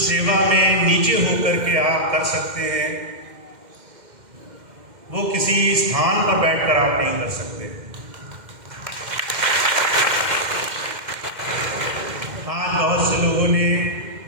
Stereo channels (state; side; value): late; left; 2.1 ms